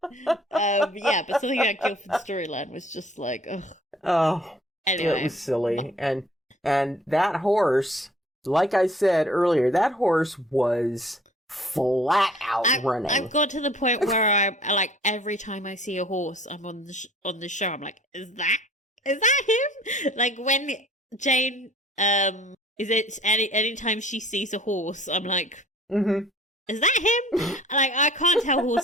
it's fine. Yeah, but something about Guildford's storyline was just like, ugh. Oh, anyway. It was silly. And that horse, like I said earlier, that horse was flat out running. I've got to the point where I like every time I see a horse, I'm on the show. I'm like, is that him? Like when Jane, is it anytime she sees a horse, I'm like, is that him? Like I can't tell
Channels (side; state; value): both; normal; correlation 0.52